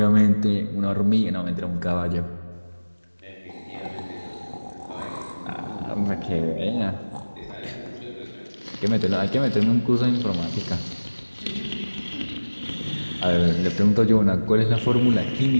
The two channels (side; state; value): both; inverted; correlation -1.00